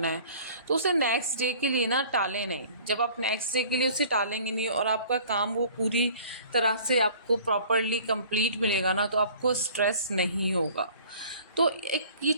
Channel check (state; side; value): inverted; both; correlation -0.49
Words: है, तो उसे नेक्स्ट डे के लिए ना टालें नहीं। जब आप नेक्स्ट डे के लिए उसे टालेंगे नहीं और आपका काम वो पूरी तरह से आपको प्रॉपरली कंप्लीट मिलेगा ना, तो आपको स्ट्रेस नहीं होगा। तो एक ये